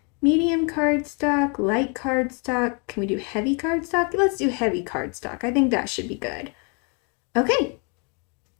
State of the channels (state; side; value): quieter; right; 35.5 dB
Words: medium cardstock, light cardstock. Can we do heavy cardstock? Let's do heavy cardstock. I think that should be good. Okay,